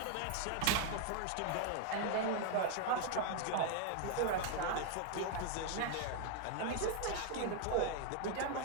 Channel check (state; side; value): different; both; correlation 0.00